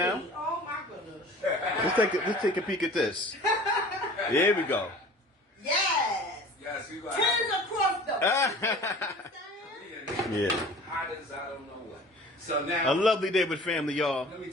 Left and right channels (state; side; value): normal; both; correlation 0.43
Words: now. Oh my goodness. Let's take a peek at this. Here we go. Yes. Yes, you got Tens across the. Yeah. hot as I don't know what. So now, A lovely day with family, y'all. let me